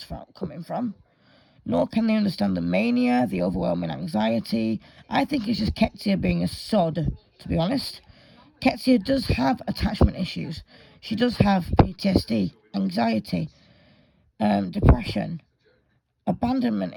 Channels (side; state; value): both; identical; correlation 1.00